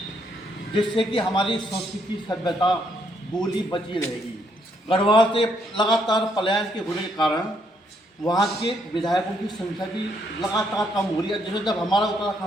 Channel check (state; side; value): normal; both; correlation 0.73